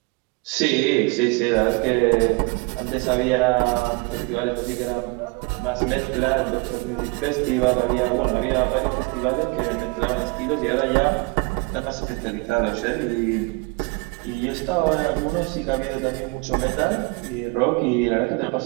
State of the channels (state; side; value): quieter; left; 28.1 dB